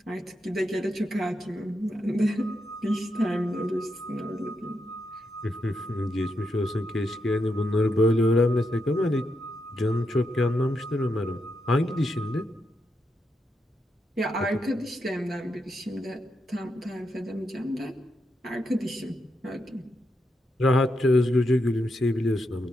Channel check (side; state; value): both; normal; correlation 0.83